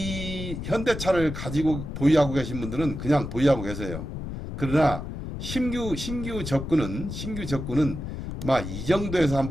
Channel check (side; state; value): left; noise; rumble, 7 dB below the sound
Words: 현대차를 가지고 보유하고 계신 분들은 그냥 보유하고 계세요. 그러나 신규 접근은 이 정도에서